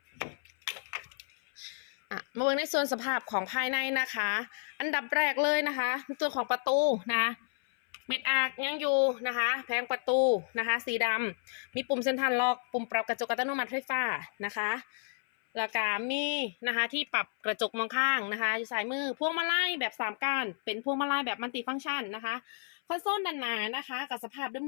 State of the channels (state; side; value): silent; right; 57 dB below the other